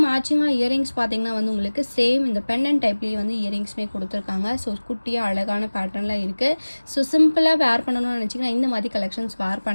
மேட்சிங்காக இயரிங்ஸ் பார்த்தீங்கன்னா வந்து உங்களுக்கு சேம் இந்த பென்னன் டைப்லேயே வந்து இயரிங்ஸ்மே கொடுத்துருக்காங்க. ஸோ குட்டியாக அழகான பேட்டர்னில் இருக்குது. ஸோ சிம்பிளாக வேர் பண்ணணும்னு நினச்சிங்கன்னா இந்த மாதிரி கலெக்ஷன்ஸ் வேர்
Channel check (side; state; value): both; inverted; correlation -1.00